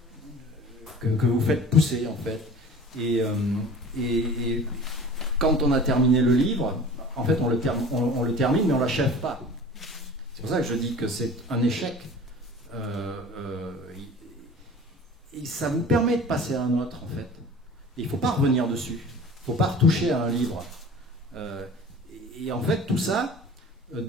que vous faites pousser, en fait. Et quand on a terminé le livre, en fait, on le termine, mais on ne l'achève pas. C'est pour ça que je dis que c'est un échec. Et ça vous permet de passer à un autre, en fait. Et il ne faut pas revenir dessus. Il ne faut pas retoucher à un livre. Et en fait, tout ça,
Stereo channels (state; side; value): normal; both; correlation 0.42